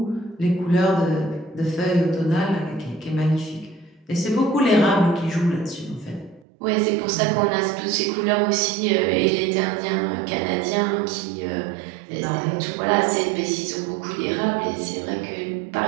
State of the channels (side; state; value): left; drops out; at 6.5 s